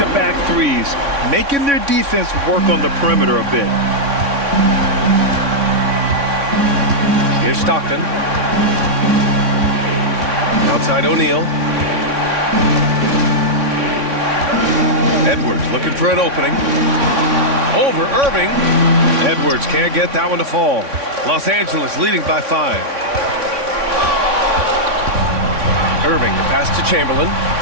threes, making their defense work on the perimeter a bit. Here's Stockton. Outside O'Neal. Edwards looking for an opening. Over Irving. Edwards can't get that one to fall. Los Angeles leading by 5. Irving, the pass to Chamberlain.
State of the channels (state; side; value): late; left; 3.6 ms